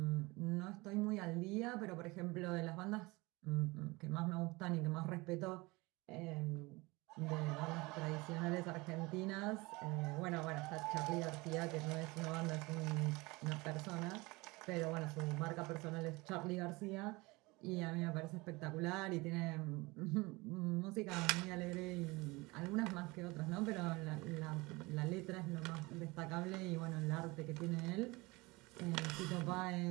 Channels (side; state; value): left; quieter; 23.5 dB